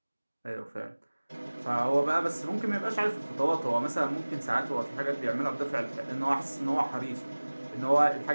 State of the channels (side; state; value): both; inverted; correlation -1.00